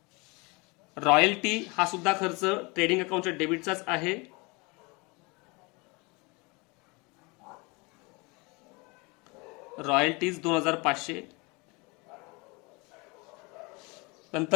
Royalty हा सुद्धा खर्च ट्रेडिंग अकाउंटच्या डेबिटचाच आहे. रॉयल्टीज 2500.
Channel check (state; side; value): quieter; right; 27.3 dB